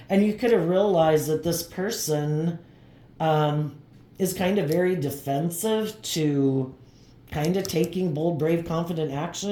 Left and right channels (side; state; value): both; identical; correlation 1.00